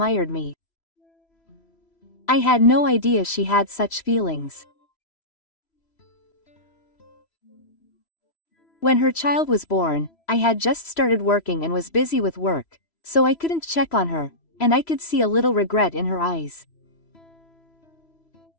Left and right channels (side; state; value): right; late; 3.0 ms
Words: me. I had no idea she had such feelings. When her child was born, I had just started working and was busy with work, so I couldn't check on her, and I could see a little regret in her eyes.